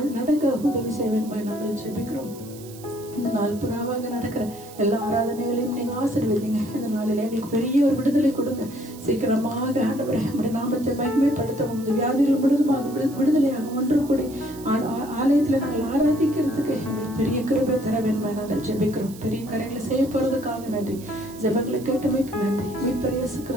நடக்க உதவி செய்வேன் நாங்கள் ஜெபிக்கிறோம். இந்த நாள் புறாவாக நடக்கிற எல்லா ஆராதனைகளையும் நீங்க ஆசீர்வதிங்க. இந்த நாளில் எங்களுக்கு பெரிய ஒரு விடுதலை கொடுங்க. சீக்கிரமாக ஆண்டவரே நம்முடைய நாமத்தை மகிமைப்படுத்தவும், இந்த வியாதிகள் முழுதுமாக விடுதலையாக ஒன்று கூடி ஆலயத்துல நாங்கள் ஆராதிக்கிறதுக்கு எங்களுக்கு பெரிய கிருபை தர வேண்டுமா நாங்கள் ஜெபிக்கிறோம். பெரிய காரியங்களை செய்ய போறதுக்காக நன்றி. ஜெபங்களை கேட்டமைக்கு நன்றி. மீட்பர் இயேசு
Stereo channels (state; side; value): noise; right; hiss, 19 dB below the sound